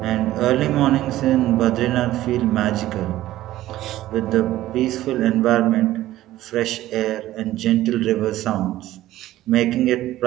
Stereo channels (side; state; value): left; quieter; 14.8 dB